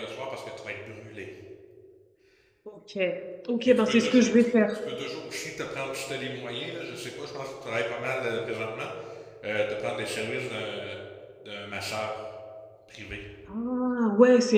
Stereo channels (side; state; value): both; identical; correlation 1.00